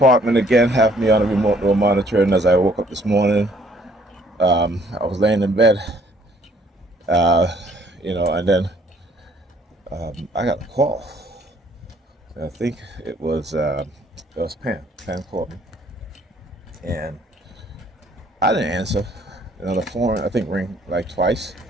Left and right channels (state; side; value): normal; both; correlation 0.62